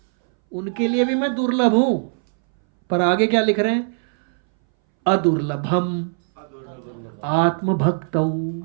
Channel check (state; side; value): silent; left; 63 dB below the other